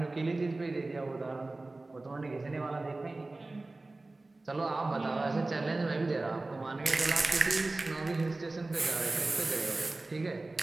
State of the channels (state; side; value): quieter; left; 3.1 dB